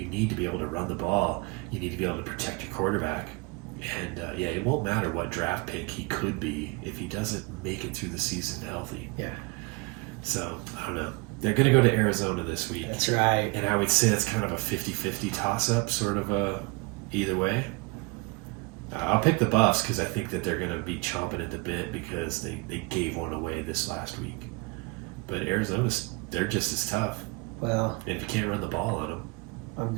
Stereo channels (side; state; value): left; quieter; 27.5 dB